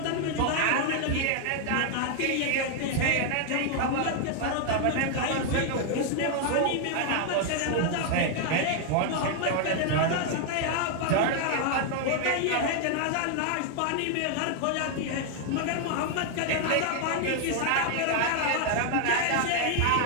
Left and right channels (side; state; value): both; different; correlation 0.00